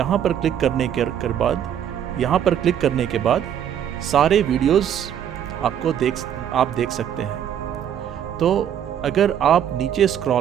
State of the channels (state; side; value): quieter; left; 9.5 dB